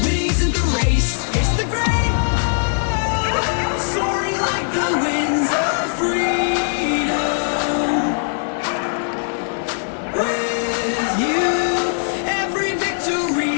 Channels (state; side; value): silent; right; 57 dB below the other